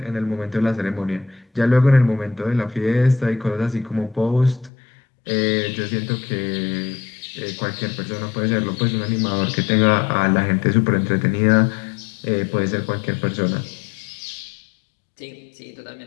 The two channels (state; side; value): drops out; right; at 4.7 s